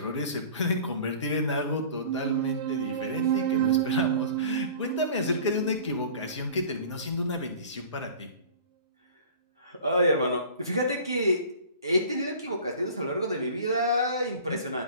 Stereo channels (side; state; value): both; inverted; correlation -0.43